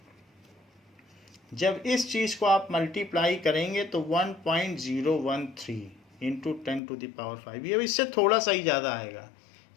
जब इस चीज़ को आप मल्टीप्लाई करेंगे तो 1.013 इंटू 10⁵, ये इससे थोड़ा सा ही ज़्यादा आएगा,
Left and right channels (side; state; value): right; drops out; at 6.8 s